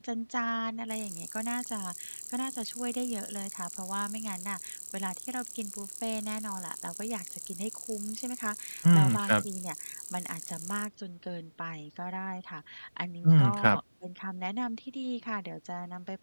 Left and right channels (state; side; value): inverted; both; correlation -1.00